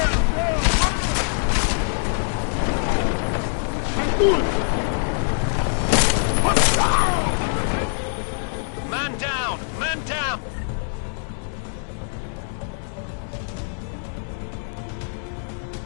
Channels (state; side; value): silent; right; digital silence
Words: Man down! Man down!